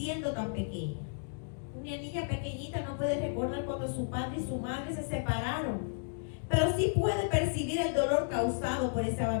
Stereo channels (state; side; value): silent; right; digital silence